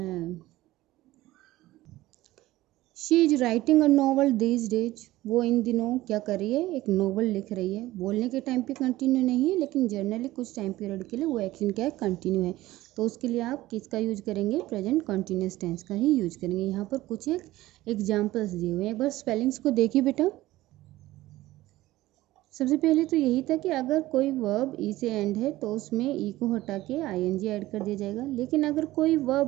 she is writing a novel these days. वो इन दिनों क्या कर रही है? एक नॉवल लिख रही है। बोलने के टाइम पे कंटिन्यू नहीं है लेकिन जनरली कुछ टाइम पीरियड के लिए वो एक्शन क्या है? कंटिन्यू है। तो उसके लिए आप किसका यूज करेंगे? प्रेजेंट कंटिन्यूअस टेंस का ही यूज करेंगे। यहाँ पर कुछ एक एग्जाम्पल्स दिए हुए हैं, एक बार स्पेलिंग्स को देखिए बेटा। सबसे पहले तो यही था कि अगर कोई वर्ब ई से एंड है तो उसमें ई को हटा के ING ऐड कर दिया जाएगा। लेकिन अगर कोई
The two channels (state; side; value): quieter; left; 16.9 dB